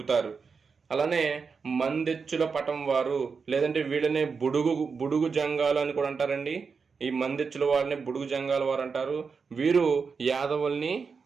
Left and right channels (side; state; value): left; quieter; 5.3 dB